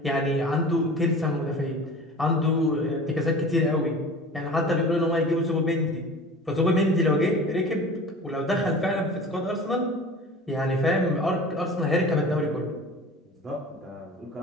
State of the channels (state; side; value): normal; both; correlation 0.39